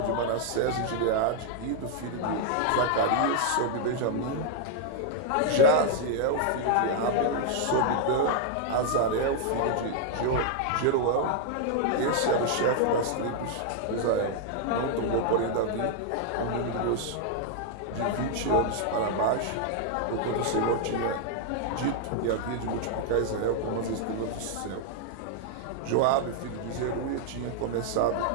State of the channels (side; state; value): both; different; correlation 0.00